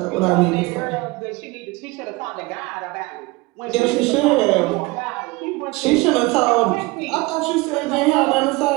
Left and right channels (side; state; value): left; quieter; 23.2 dB